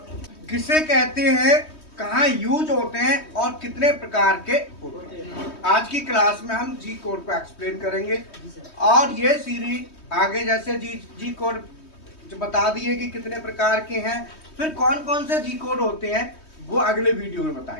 किसे कहते हैं, कहाँ यूज होते हैं और कितने प्रकार के होते हैं। आज की क्लास में हम जी कोड को एक्सप्लेन करेंगे और ये सीरीज आगे जैसे जी कोड जो बता दिए कि कितने प्रकार के हैं, फिर कौन कौन से जी कोड होते हैं वो अगले वीडियो में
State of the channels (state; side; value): late; right; 3.2 ms